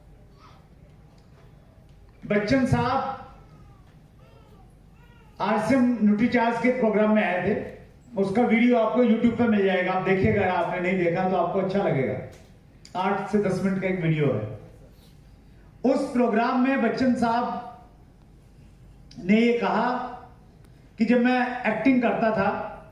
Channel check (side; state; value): both; identical; correlation 1.00